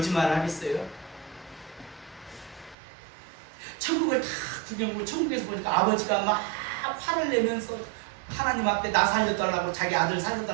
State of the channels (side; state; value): left; drops out; at 2.8 s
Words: 하겠어요? 천국을 다 구경하고 천국에서 보니까 아버지가 막 화를 내면서 하나님 앞에 나 살려달라고 자기 아들